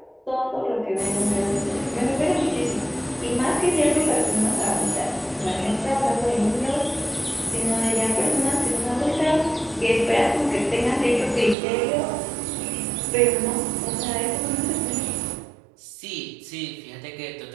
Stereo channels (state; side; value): drops out; left; at 11.6 s